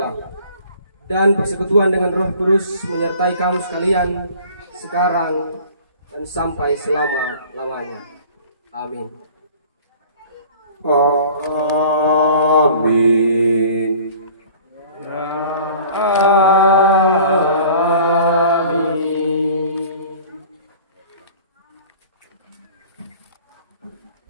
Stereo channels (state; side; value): inverted; both; correlation -0.47